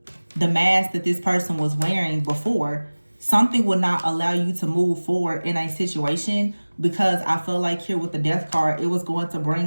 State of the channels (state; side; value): inverted; both; correlation -1.00